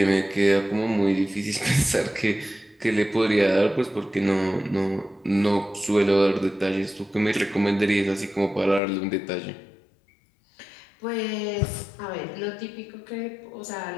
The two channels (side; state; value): right; drops out; at 8.8 s